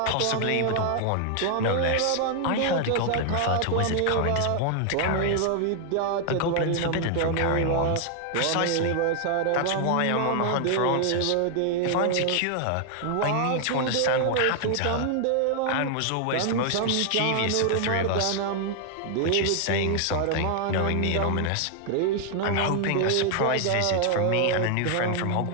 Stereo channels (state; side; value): different; both; correlation 0.00